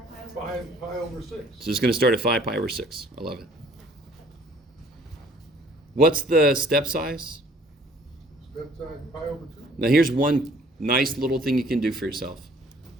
5 pi over 6. So it's going to start at 5 pi over 6. I love it. What's the step size? Step size pi over 2. Now here's one nice little thing you can do for yourself.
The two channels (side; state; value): both; normal; correlation 0.57